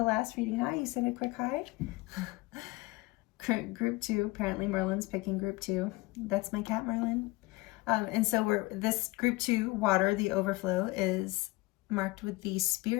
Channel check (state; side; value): quieter; right; 21.8 dB